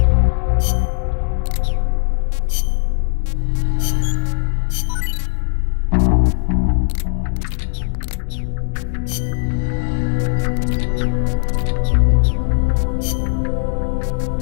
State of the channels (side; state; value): right; silent; 67 dB below the other